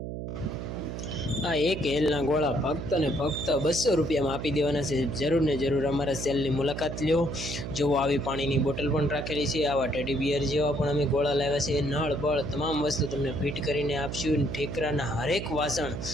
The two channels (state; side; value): noise; right; hum, 6 dB below the sound